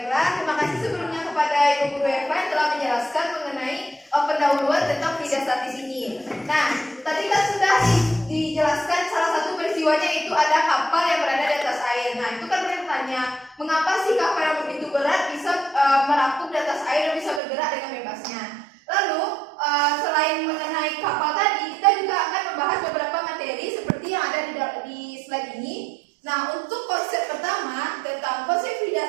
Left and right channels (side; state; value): left; drops out; at 17.4 s